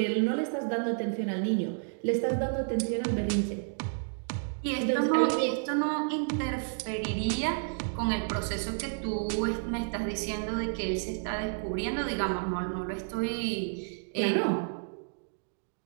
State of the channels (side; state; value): left; silent; digital silence